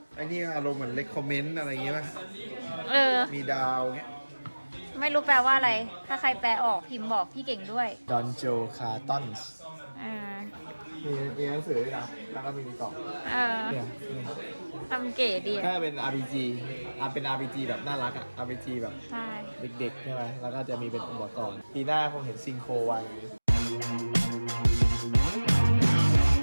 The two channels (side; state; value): both; inverted; correlation -1.00